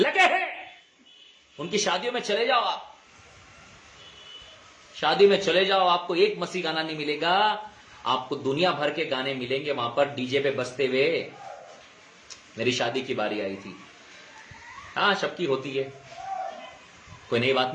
हैं। उनकी शादियों में चले जाओ, आप शादी में चले जाओ, आपको एक मसीह गाना नहीं मिलेगा, आपको दुनिया भर के गाने मिलेंगे वहां पर डीजे पे बजते हुए। मेरी शादी की बारी आई थी, हाँ सबकी होती है, कोई नई बात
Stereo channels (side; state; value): both; identical; correlation 1.00